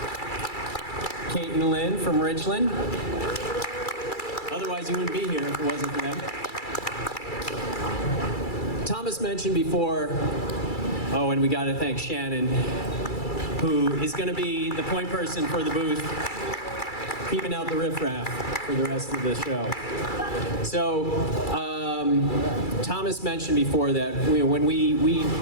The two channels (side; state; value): right; late; 2.3 ms